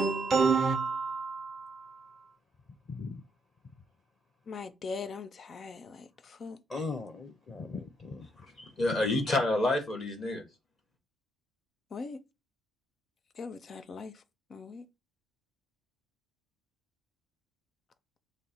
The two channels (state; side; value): normal; both; correlation 0.74